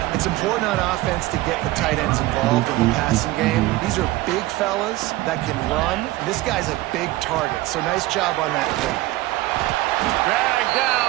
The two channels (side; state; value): left; quieter; 17.9 dB